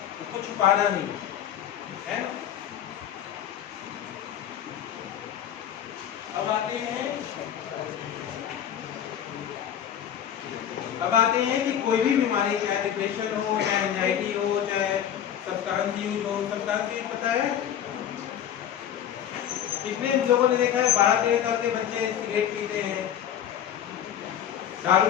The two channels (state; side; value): quieter; right; 10.0 dB